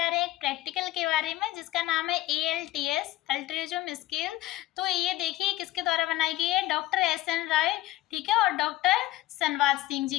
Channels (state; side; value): quieter; right; 16.0 dB